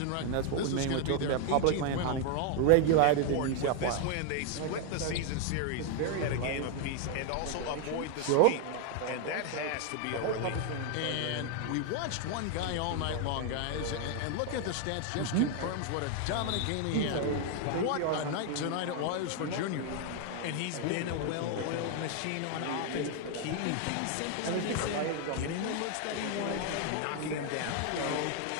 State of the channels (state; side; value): different; both; correlation 0.01